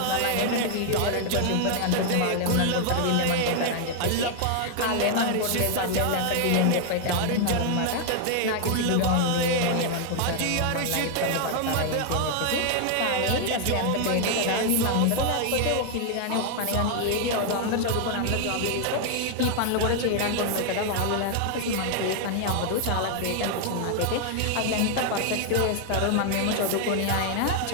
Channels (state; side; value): different; both; correlation 0.00